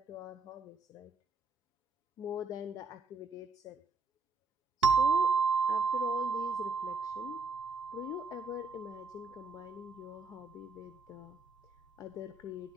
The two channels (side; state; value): left; quieter; 3.8 dB